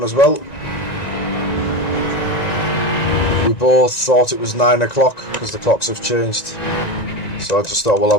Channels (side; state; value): right; late; 1.9 ms